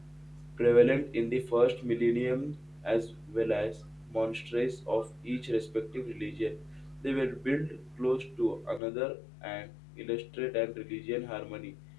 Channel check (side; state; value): right; drops out; at 8.8 s